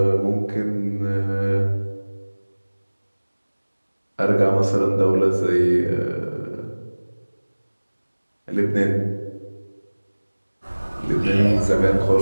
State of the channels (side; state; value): both; inverted; correlation -1.00